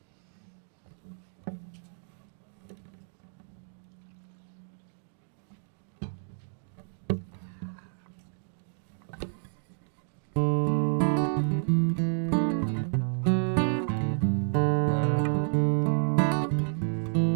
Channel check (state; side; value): silent; left; digital silence